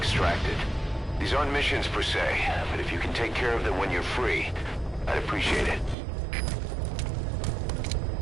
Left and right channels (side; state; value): left; drops out; at 6.0 s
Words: These aren't missions per se, but if you can take care of them when you're free, I'd appreciate it.